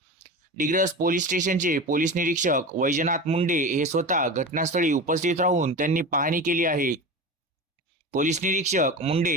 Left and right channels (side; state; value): both; normal; correlation 0.28